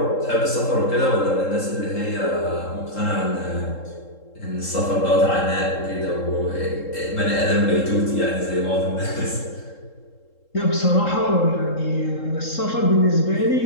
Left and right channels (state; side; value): late; right; 3.7 ms